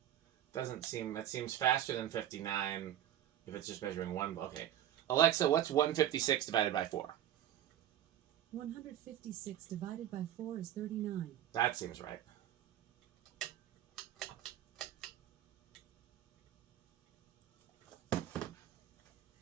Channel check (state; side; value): quieter; left; 11.6 dB